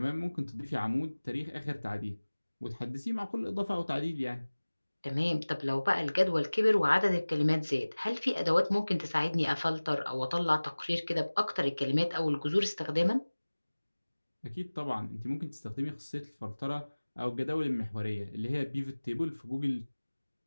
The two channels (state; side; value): inverted; both; correlation -1.00